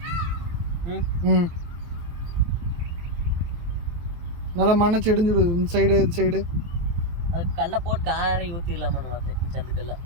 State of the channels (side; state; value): left; late; 23 ms